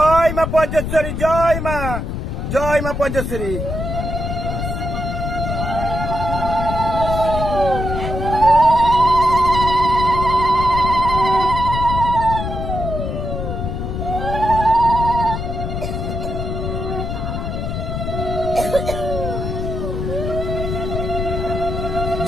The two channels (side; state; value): left; noise; rumble, 4 dB below the sound